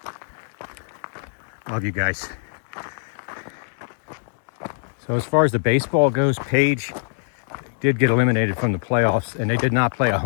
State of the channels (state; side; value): silent; right; digital silence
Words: Love you guys. So as far as the baseball goes, Page did get eliminated from the playoffs, and they did not play a